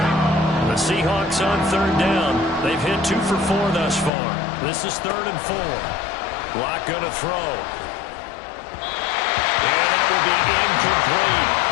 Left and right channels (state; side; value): drops out; right; at 4.1 s